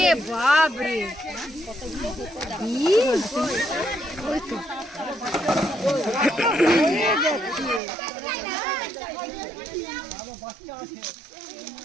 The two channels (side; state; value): left; drops out; at 7.8 s